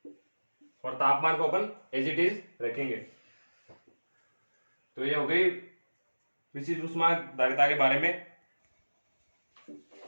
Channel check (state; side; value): inverted; both; correlation -1.00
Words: और तापमान को अपन एज इट इज रखेंगे। तो ये हो गई विशिष्ट ऊष्मा धारिता के बारे में।